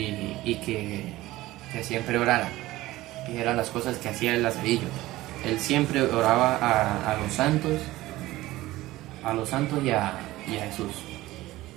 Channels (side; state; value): left; quieter; 17.4 dB